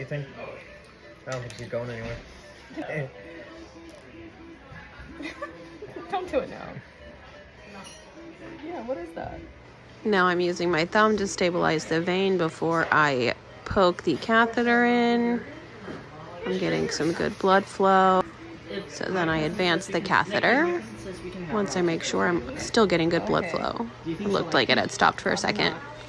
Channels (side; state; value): both; identical; correlation 1.00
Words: think? I don't think she's going anywhere. Don't do it now. Yeah, what is that? Now I'm using my thumb to stabilize the vein before I poke the catheter in. I'm getting some good blood flow. So then I advance the catheter once I make sure I'm still getting good blood flow. It looked like it had stopped for a second.